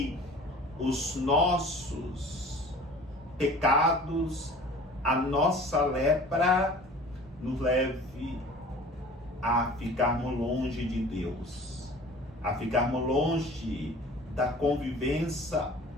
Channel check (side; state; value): both; normal; correlation 0.45